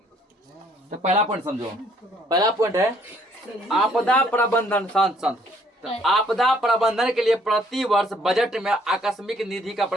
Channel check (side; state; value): both; normal; correlation 0.64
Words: तो पहला पॉइंट समझो, पहला पॉइंट है आपदा प्रबंधन। शांत। तो आपदा प्रबंधन के लिए प्रति वर्ष बजट में आकस्मिक निधि का